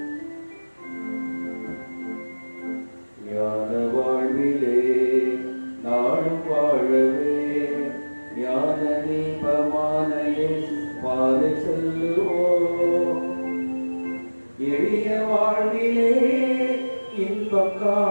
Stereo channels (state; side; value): inverted; both; correlation -1.00